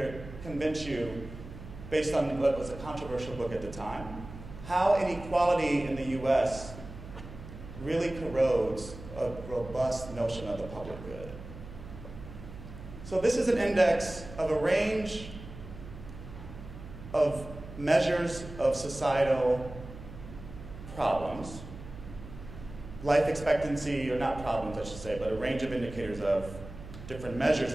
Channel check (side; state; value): right; noise; hum, 14 dB below the sound